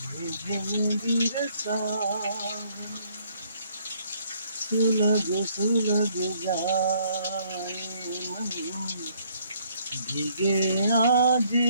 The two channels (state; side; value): inverted; both; correlation -0.65